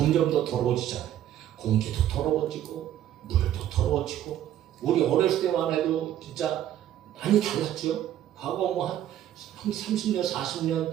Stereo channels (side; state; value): left; quieter; 11.7 dB